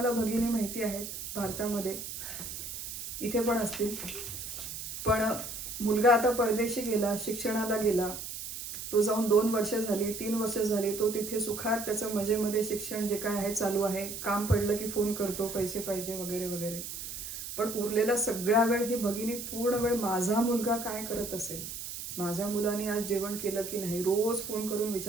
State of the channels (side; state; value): right; noise; hiss, 8 dB below the sound